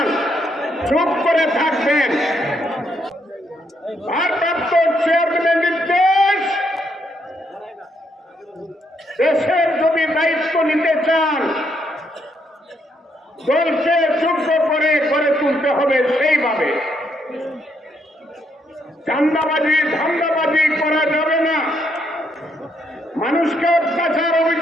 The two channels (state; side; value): normal; both; correlation 0.75